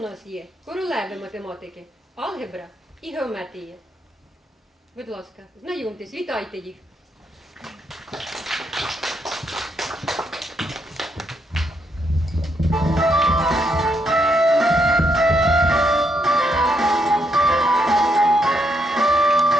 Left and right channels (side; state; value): both; normal; correlation 0.77